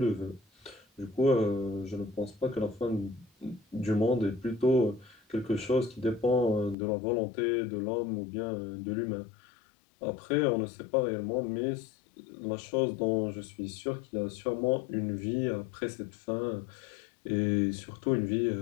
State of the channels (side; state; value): right; drops out; at 6.8 s